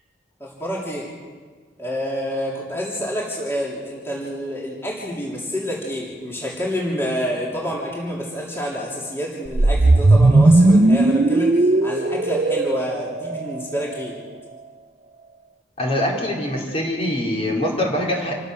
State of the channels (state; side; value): normal; both; correlation 0.77